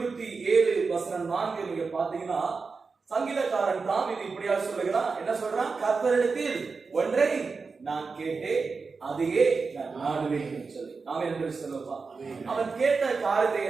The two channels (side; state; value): left; quieter; 4.6 dB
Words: வசனம் 4 நீங்க பாத்தீங்கன்னா சங்கீதக்காரன் தாவீது இப்படியா சொல்லுகிறான். என்ன சொல்றான்? கர்த்தரிடத்தில் ஒன்றை நான் கேட்டேன், அதையே நான் நாடுவேன் சொல்லி. அவன் என்று சொல்லுவான். அவன் கேட்ட காரியத்தை